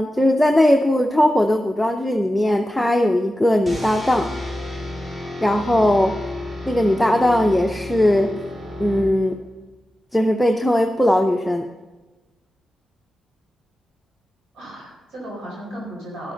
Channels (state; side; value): normal; both; correlation 0.93